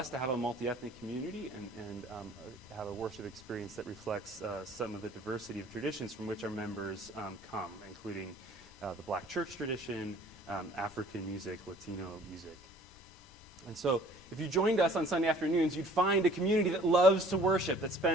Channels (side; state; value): both; normal; correlation 0.53